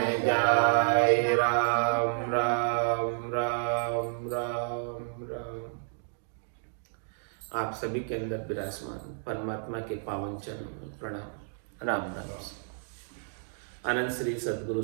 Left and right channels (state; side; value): silent; left; digital silence